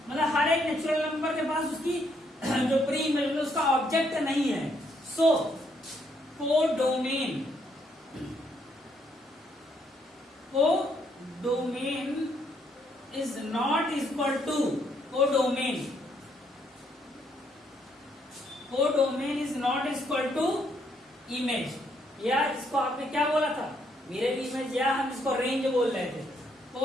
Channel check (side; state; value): both; normal; correlation 0.72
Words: मतलब हर एक नेचुरल नंबर के पास उसकी जो प्री इमेज मतलब उसका ऑब्जेक्ट नहीं है। So codomain, codomain is not equal to, codomain, codomain is not equal to image. या इसको आपने क्या बोला था, मिरर इमेज, या हम इसको रेंज बोल रहे थे।